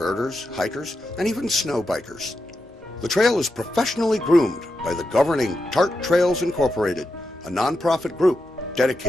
hikers, and even snow bikers. The trail is professionally groomed by the governing TART Trails Incorporated, a nonprofit group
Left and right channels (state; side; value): normal; both; correlation 0.87